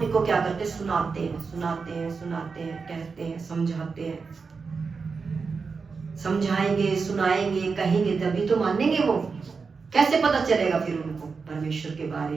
क्या करते, सुनाते हैं, सुनाते हैं, सुनाते हैं, कहते हैं, समझाते हैं, समझाएंगे, सुनाएंगे, कहेंगे तभी तो मानेंगे वो। कैसे पता चलेगा फिर उनको परमेश्वर के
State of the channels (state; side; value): quieter; left; 5.0 dB